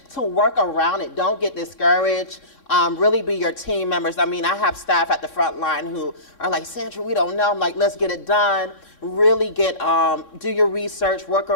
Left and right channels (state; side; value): late; right; 3.6 ms